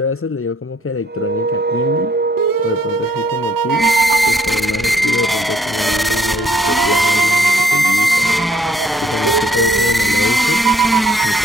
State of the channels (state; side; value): normal; both; correlation 0.66